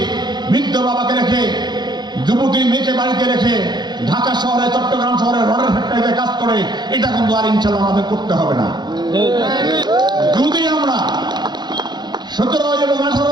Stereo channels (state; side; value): late; left; 0.21 ms